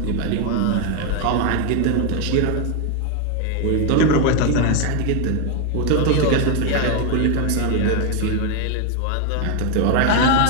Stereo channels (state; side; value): different; both; correlation 0.01